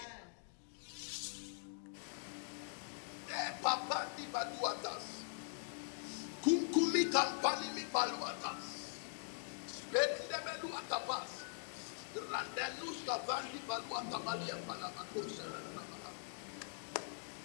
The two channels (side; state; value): right; silent; digital silence